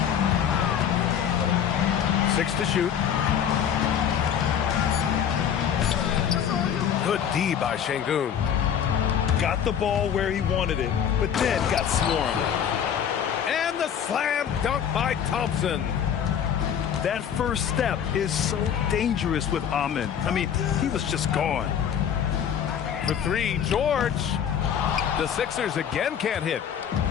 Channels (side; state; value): right; quieter; 8.6 dB